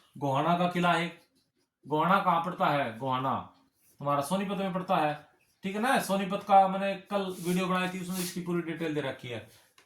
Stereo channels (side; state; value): both; identical; correlation 1.00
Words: गोहाना का किला है। गोहाना कहाँ पड़ता है, गोहाना तुम्हारा सोनीपत में पड़ता है, ठीक है ना। सोनीपत का मैंने कल वीडियो बनाई थी, उसमें इसकी पूरी डिटेल दे रखी है